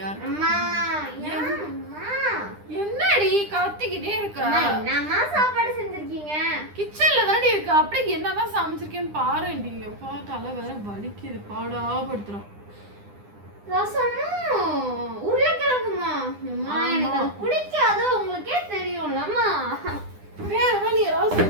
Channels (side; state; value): left; late; 9.9 ms